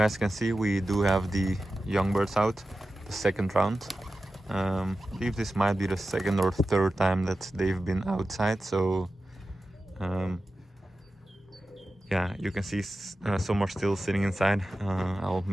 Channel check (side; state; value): both; normal; correlation 0.93